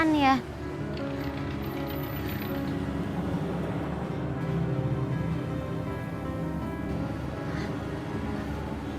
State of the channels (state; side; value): identical; both; correlation 1.00